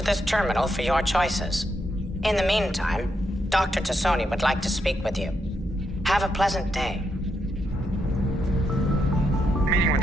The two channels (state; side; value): normal; both; correlation 0.81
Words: this terminal for your choices. In the meantime, Dr. Tassoni would like to speak with you. Have a pleasant day. Meeting with